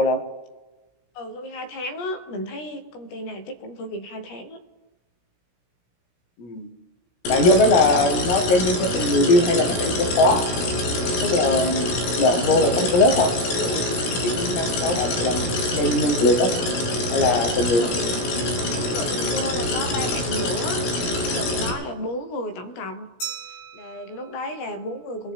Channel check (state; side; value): late; right; 17 ms